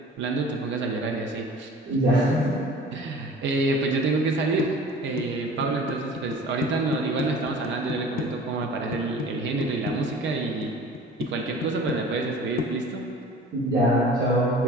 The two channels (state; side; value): normal; both; correlation 0.44